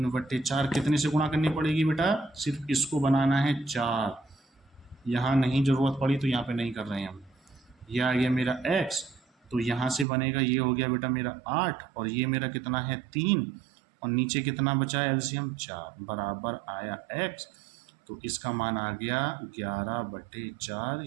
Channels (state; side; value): drops out; left; at 10.1 s